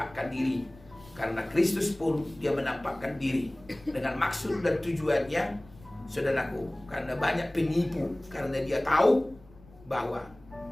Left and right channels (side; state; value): left; noise; rumble, 23 dB below the sound